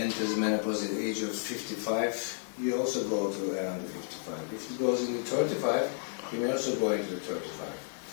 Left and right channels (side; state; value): right; silent; digital silence